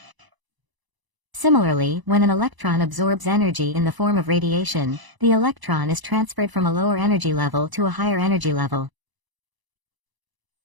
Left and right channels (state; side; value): late; left; 1.0 ms